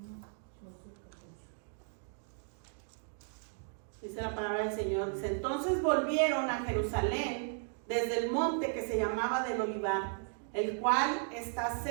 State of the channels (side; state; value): left; silent; 54 dB below the other